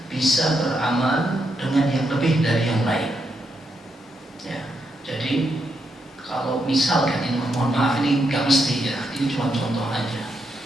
bisa beramal dengan yang lebih dari yang lain. Ya, jadi kalau misalkan ini, mohon maaf ini nggak mesti ya, ini cuma contoh aja.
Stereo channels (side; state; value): both; normal; correlation 0.81